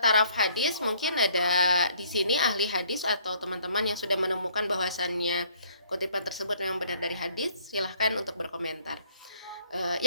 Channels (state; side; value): inverted; both; correlation -0.62